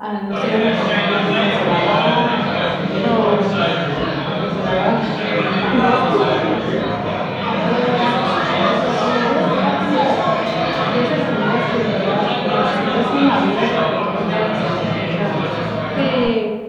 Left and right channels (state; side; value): identical; both; correlation 1.00